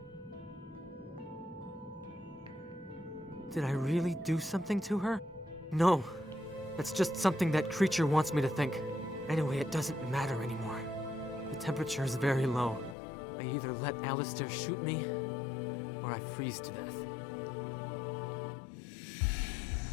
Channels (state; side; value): drops out; right; at 13.0 s